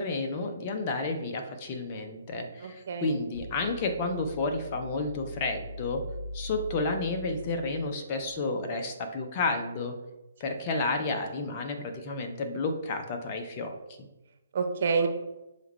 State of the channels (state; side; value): inverted; both; correlation -0.54